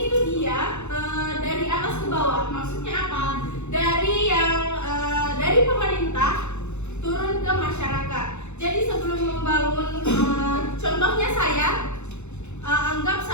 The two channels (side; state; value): right; late; 0.82 ms